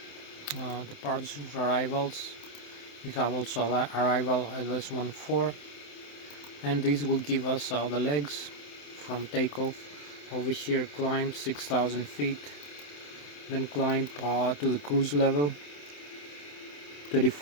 departures, arrivals. We have also arrival at LS14, and this will give us the legs from takeoff. Over here climb 6,000 feet, then climb to the cruise level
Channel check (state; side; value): late; right; 27 ms